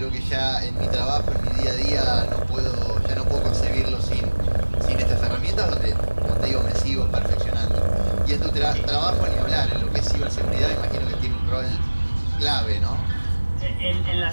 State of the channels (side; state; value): both; inverted; correlation -1.00